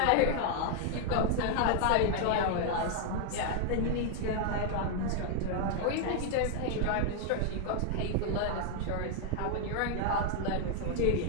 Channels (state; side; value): different; both; correlation 0.00